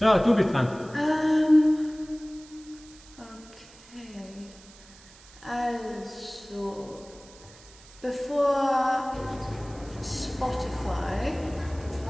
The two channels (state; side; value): noise; right; hiss, 22 dB below the sound